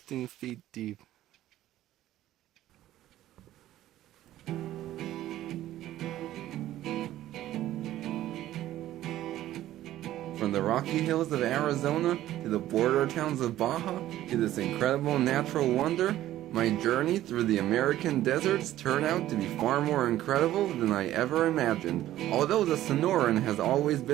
feet deep. From the rocky hills of Arizona to the border towns of Baja to this incredible natural wonder, my journey through the American deserts turned out to be far more incredible than I ever imagined. Although the Sonoran has always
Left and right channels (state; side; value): quieter; left; 13.8 dB